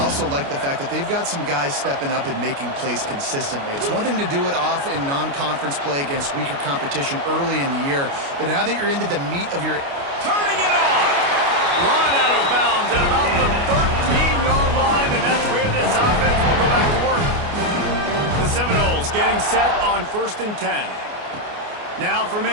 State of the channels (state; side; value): late; left; 29 ms